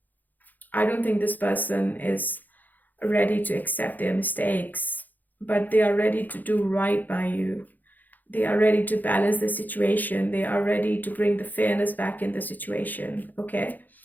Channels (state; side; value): late; right; 0.084 ms